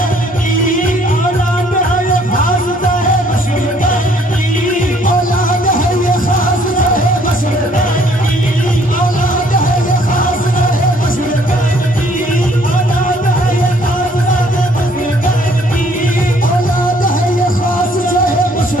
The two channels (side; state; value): both; normal; correlation 0.62